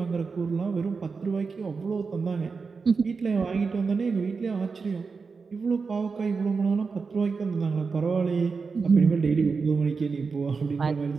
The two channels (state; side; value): quieter; left; 4.9 dB